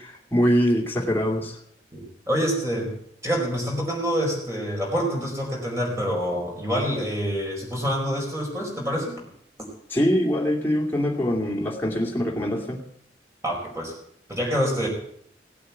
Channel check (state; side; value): normal; both; correlation 0.73